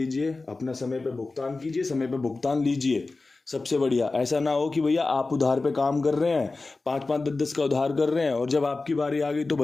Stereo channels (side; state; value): right; quieter; 3.5 dB